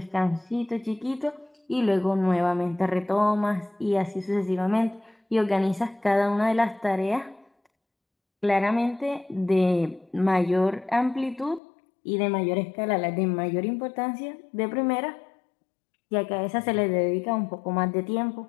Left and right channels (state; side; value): drops out; right; at 11.6 s